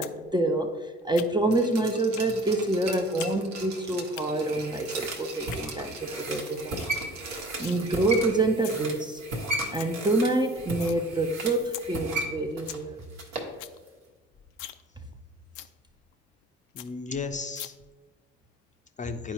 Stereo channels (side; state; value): both; normal; correlation 0.47